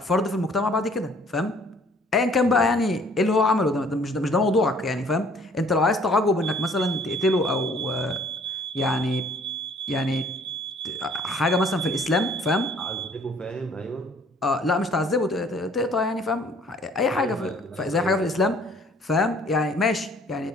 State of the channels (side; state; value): both; normal; correlation 0.57